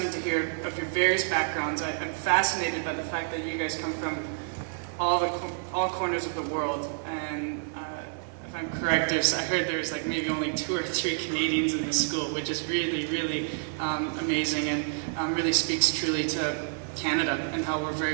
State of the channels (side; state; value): left; silent; 59 dB below the other